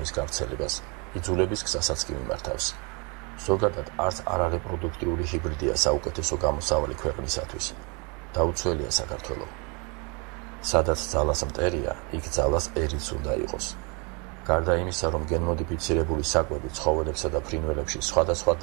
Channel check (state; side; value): quieter; left; 31.7 dB